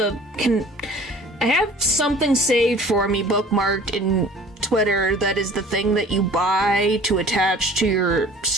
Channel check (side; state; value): both; normal; correlation 0.48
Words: have something saved for me, bookmarked in Twitter, that is the thing that you buy to attach to your